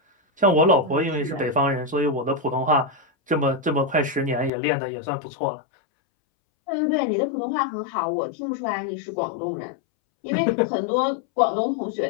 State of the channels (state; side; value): drops out; right; at 4.5 s